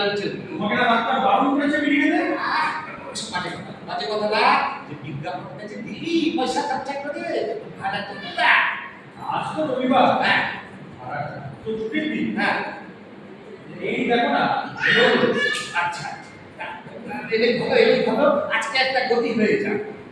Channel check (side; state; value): both; identical; correlation 1.00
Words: জন্য। তোমাকে না ডাক্তার বারণ করেছে বিড়ি খেতে? বাজে কথা না, যে বিজ্ঞাপনটা যে দিলি পয়সা খরচা করে ভাড়া তো দিতা। আজ তো রবিবার, হ্যাঁ তো ছুটির দিন। হ্যাঁ, এই দেখো না, আচ্ছা এলেই ভালো, আজকে একটা গতি হয়ে যাক।